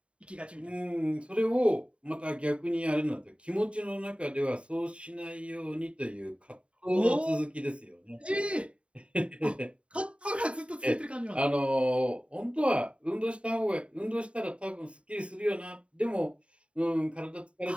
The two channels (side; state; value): left; late; 0.060 ms